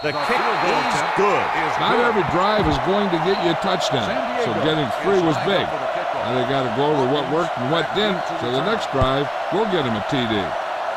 The kick is good. Not every drive is going to get you a touchdown, so getting three was big. Now they got to go over what worked and what didn't, so the next drive will get him a TD.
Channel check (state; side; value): identical; both; correlation 1.00